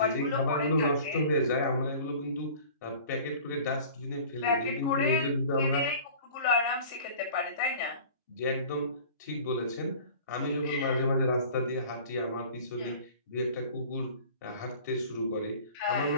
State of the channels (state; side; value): inverted; both; correlation -0.43